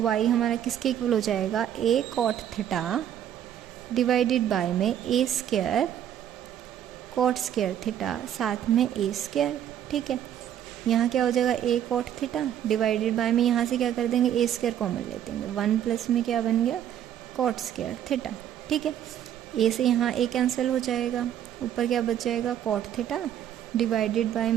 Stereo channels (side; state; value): left; quieter; 10.4 dB